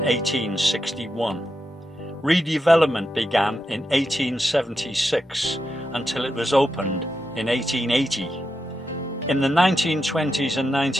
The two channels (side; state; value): both; normal; correlation 0.86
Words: Redevelopment began in 1876 until it was opened in 1880. In the 1920s and